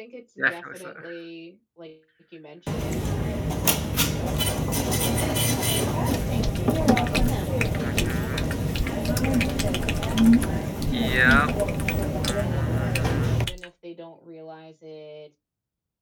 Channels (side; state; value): both; identical; correlation 1.00